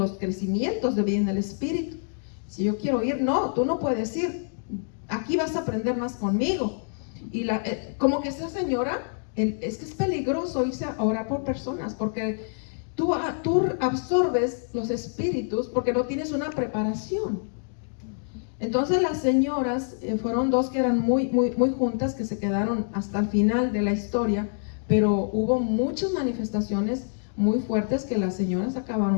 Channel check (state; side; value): silent; right; digital silence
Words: crecimientos de vida en el Espíritu. Si yo quiero ir, no, tú no puedes ir, aquí vas a aprender más conmigo. Y como que esa señora, es que es peligroso irse a orar por personas, porque tú absorbes los espíritus porque no tienes una preparación. Entonces las señoras, fueron dos que eran muy juntas, que se quedaron hasta el final de la historia, pero hubo muchas manifestaciones muy fuertes que las señoras